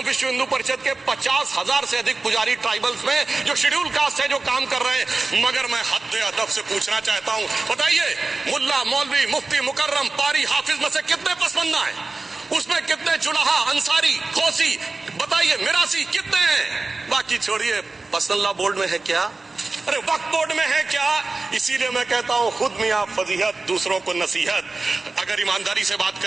विश्व हिंदू परिषद के 50,000 से अधिक पुजारी ट्राइबल्स में जो शेड्यूल कास्ट है जो काम कर रहे हैं। मगर मैं हद अदब से पूछना चाहता हूं, बताइए मुल्ला मौलवी मुफ्ती मुकर्रम पारी हाफिज में से कितने पसमंदा है? उसमें कितने जुलाहा अंसारी खोसी बताइए मिरासी कितने हैं? बाकी छोड़िए, पसंदला बोर्ड में है क्या? अरे वक्फ बोर्ड में है क्या? इसीलिए मैं कहता हूं खुद मियां फजीहत दूसरों को नसीहत। अगर ईमानदारी से बात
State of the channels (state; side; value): quieter; left; 3.6 dB